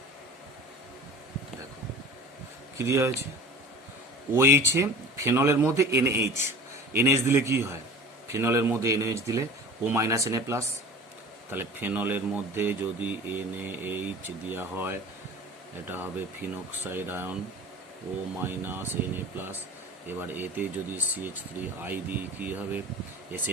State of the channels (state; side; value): normal; both; correlation 0.40